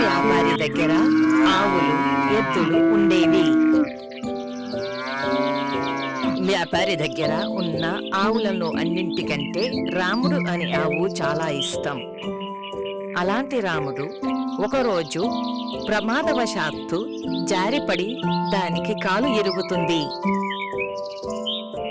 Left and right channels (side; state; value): both; identical; correlation 1.00